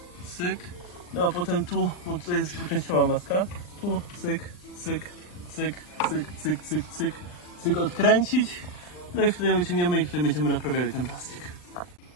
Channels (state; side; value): late; right; 39 ms